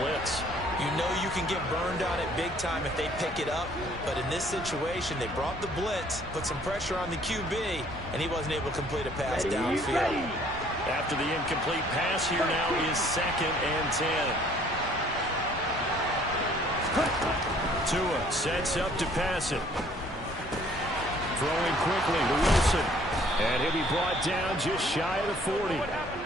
You know you can get burned on it big time if they pick it up. But in this situation, they brought the blitz, put some pressure on the QB, and he wasn't able to complete a pass downfield. After the incomplete pass, here now is 2nd and 10. Tua sets up to pass it. Throwing quickly to Wilson. And he'll be brought down just shy of the 40.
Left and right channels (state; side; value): normal; both; correlation 0.59